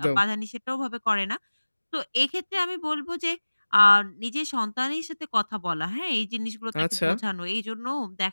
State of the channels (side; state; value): both; inverted; correlation -1.00